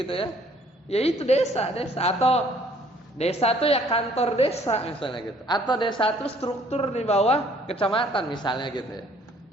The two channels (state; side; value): normal; both; correlation 0.60